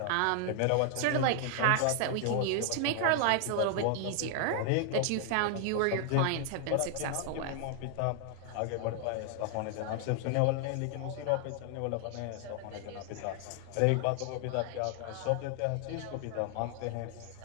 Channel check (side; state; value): both; different; correlation 0.00